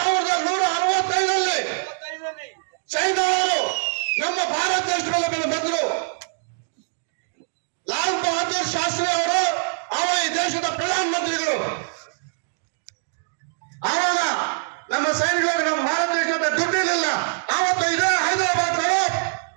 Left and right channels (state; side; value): silent; left; digital silence